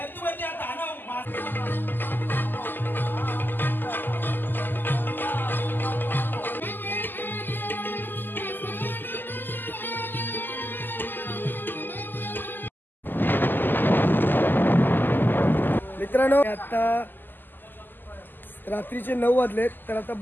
हा दानव मित्रांनो आता रात्रीचे 9 वाजलेत तर आता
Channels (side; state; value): right; late; 0.091 ms